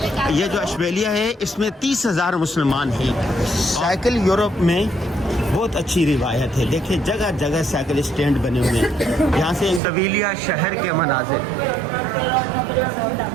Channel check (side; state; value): left; drops out; at 9.8 s